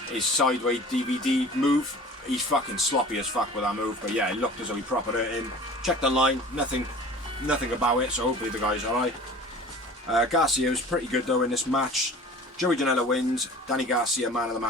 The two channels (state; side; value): normal; both; correlation 0.43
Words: sideways DVD move. He's fucking sloppy as fuck with that move, but yeah, it looked as though he proper hurt him. Checked online, nothing about it, so hopefully the guy's alright. Garcia was pretty good though in this match. Joey Janela wins. Danny Garcia, man of the